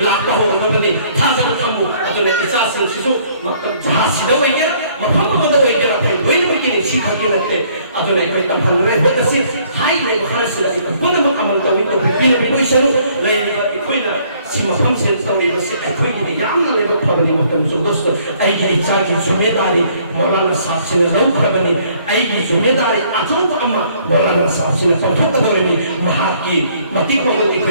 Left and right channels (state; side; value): inverted; both; correlation -0.62